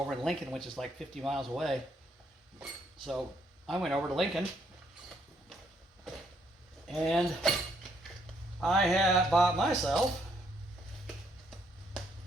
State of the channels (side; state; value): both; normal; correlation 0.71